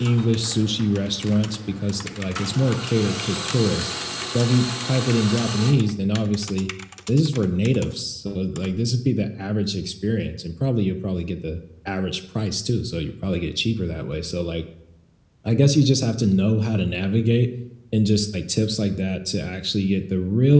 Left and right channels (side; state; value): both; identical; correlation 1.00